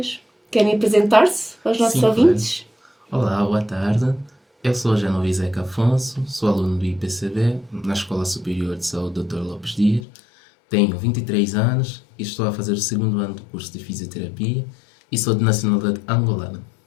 Querem apresentar-se aos nossos ouvintes? Claro. Olá, boa tarde. Eu sou Genovi Zeca Afonso, sou aluno do IPCB, na Escola Superior de Saúde Dr. Lopes Dias. Tenho 23 anos e estou a fazer o segundo ano do curso de Fisioterapia e sou de nacionalidade angolana.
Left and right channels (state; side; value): drops out; right; at 10.1 s